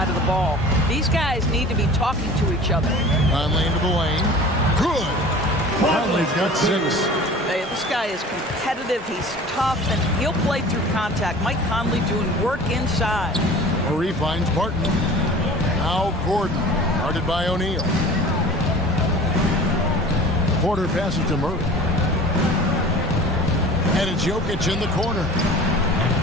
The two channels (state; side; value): normal; both; correlation 0.41